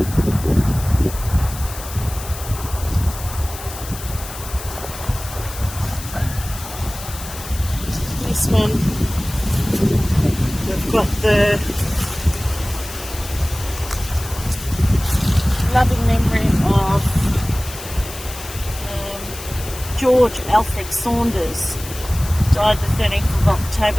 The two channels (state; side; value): noise; left; hiss, 12 dB below the sound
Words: This one, we've got the loving memory of George Alfred Saunders, died the 13th of